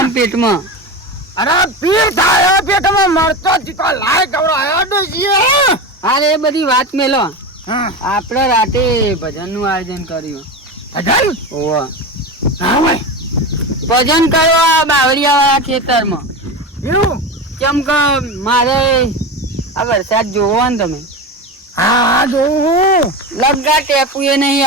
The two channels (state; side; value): normal; both; correlation 0.23